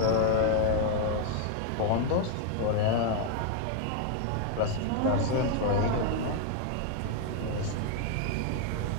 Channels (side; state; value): both; different; correlation 0.00